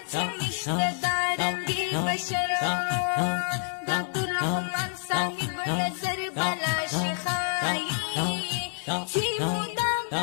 چې نشته دا رنګې بشر د عبدالرحمن صاحب نظر بلا شي ښایي چې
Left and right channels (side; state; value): right; silent; digital silence